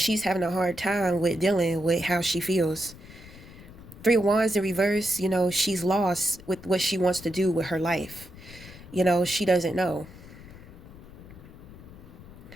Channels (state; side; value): noise; left; rumble, 18 dB below the sound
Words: having a hard time with dealing with how she feels. Three of Wands in reverse, she's lost with what she wants to do with her life. She doesn't know.